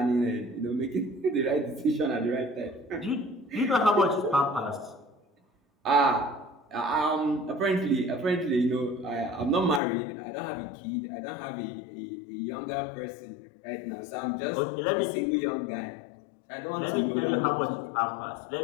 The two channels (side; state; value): right; drops out; at 9.8 s